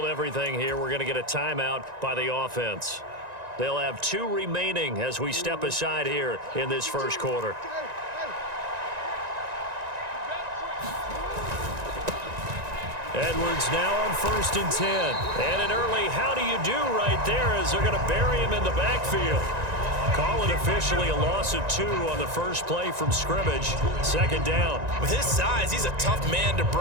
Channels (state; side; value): late; left; 1.9 ms